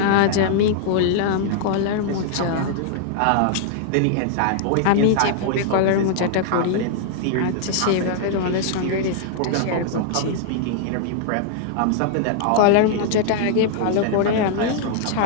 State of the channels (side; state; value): both; different; correlation -0.01